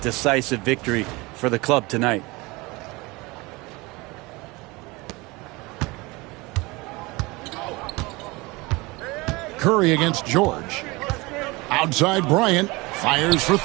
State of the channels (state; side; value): quieter; left; 23.8 dB